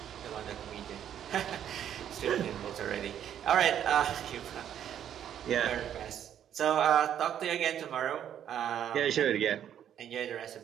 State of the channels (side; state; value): left; quieter; 9.9 dB